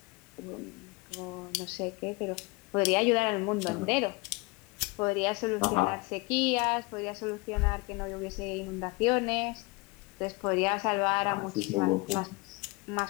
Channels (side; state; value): right; quieter; 25.2 dB